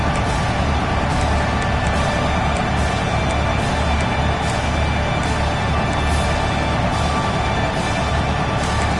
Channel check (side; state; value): both; identical; correlation 1.00